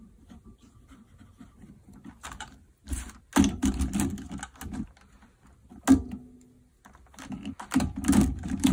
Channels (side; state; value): both; identical; correlation 1.00